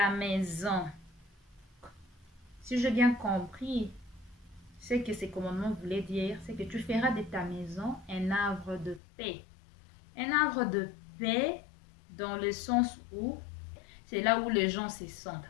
maison. Si j'ai bien compris, ce que ces commandements voulaient dire, c'est que tu feras de ta maison un havre de paix. Un havre de paix dans le sens où c'est là où les gens se sentent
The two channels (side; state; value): right; drops out; at 9.0 s